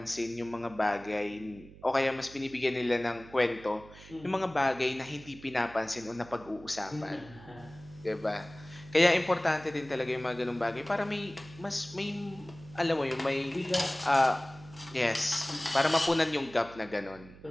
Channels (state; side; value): noise; right; hum, 19 dB below the sound